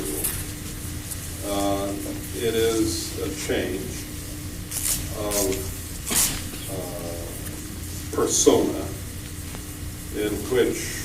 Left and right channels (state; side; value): identical; both; correlation 1.00